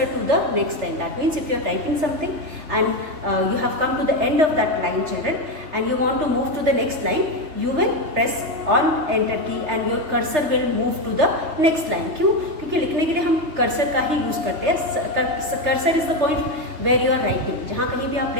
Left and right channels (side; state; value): left; late; 3.3 ms